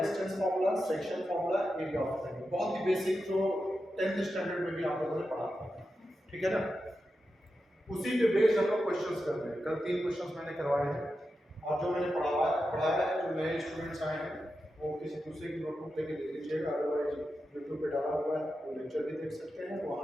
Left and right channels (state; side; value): normal; both; correlation 0.90